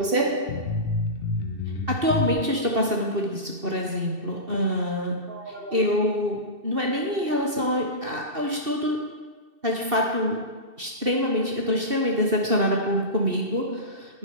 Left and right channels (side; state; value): left; late; 2.7 ms